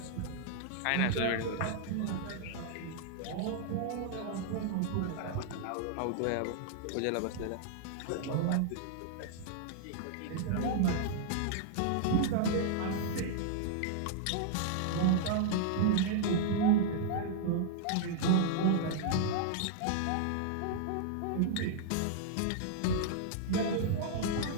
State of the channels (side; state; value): both; different; correlation -0.01